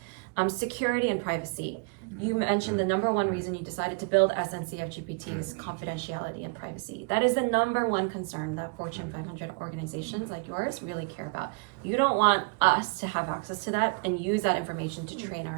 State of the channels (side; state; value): left; quieter; 33.7 dB